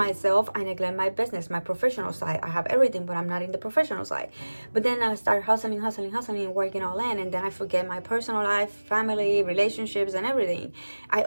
I neglect my business, my professional side. I have everything, but I'm not in the professional side. But then I start hustling, working all in, and then I forget my personal life, family, relationships, and everything. I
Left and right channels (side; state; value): both; inverted; correlation -1.00